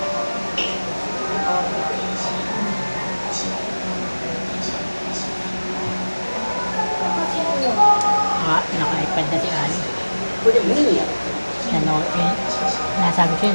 Naka-iPad na si Ali. Nasabi ko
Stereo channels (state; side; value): inverted; both; correlation -1.00